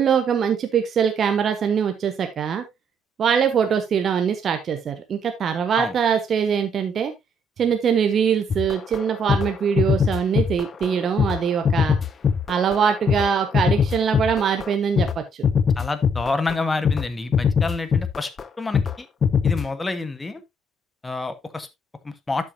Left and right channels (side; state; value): both; normal; correlation 0.69